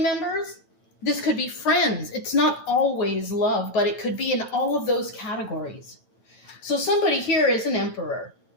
This could be friends. It's not always love, but it could be in all of those categories. So somebody here is an Emperor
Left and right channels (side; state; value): right; late; 9.1 ms